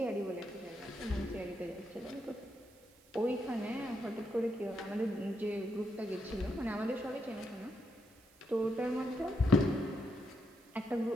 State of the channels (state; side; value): noise; right; hiss, 27 dB below the sound